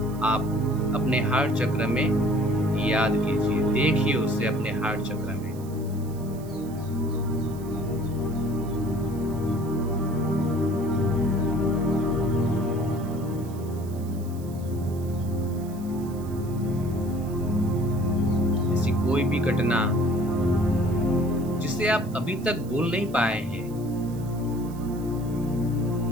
आप अपने हार्ट चक्र में याद कीजिए, देखिए उसे अपने हार्ट चक्र में। ऐसी कोई भी घटना जिसे आप अभी तक भूल नहीं पाए हैं,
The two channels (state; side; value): noise; right; hiss, 22 dB below the sound